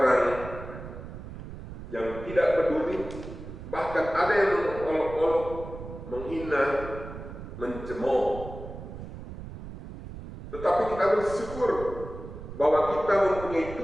yang tidak peduli, bahkan ada yang mengolok-olok, menghina, mencemooh. Tetapi kita bersyukur bahwa kita mempunyai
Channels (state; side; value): noise; right; rumble, 11 dB below the sound